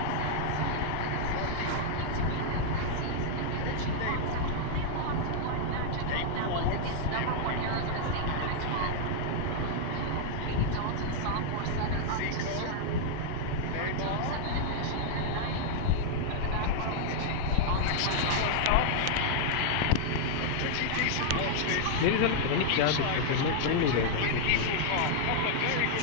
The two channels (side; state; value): both; different; correlation -0.01